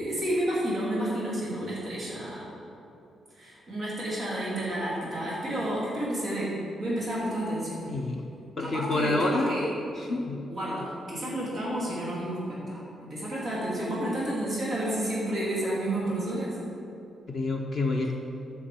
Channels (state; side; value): normal; both; correlation 0.76